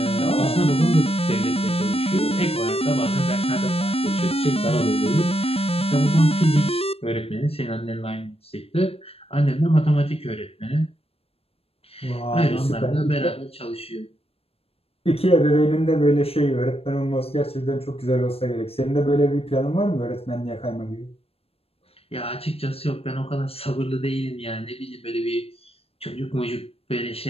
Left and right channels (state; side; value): late; right; 0.28 ms